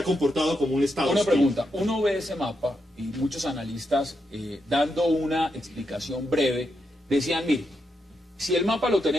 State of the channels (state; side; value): normal; both; correlation 0.84